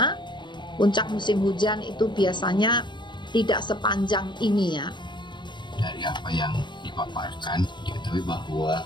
Puncak musim hujan itu biasanya tidak sepanjang ini ya. Dari apa yang dipaparkan, diketahui bahwa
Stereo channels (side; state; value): right; late; 0.22 ms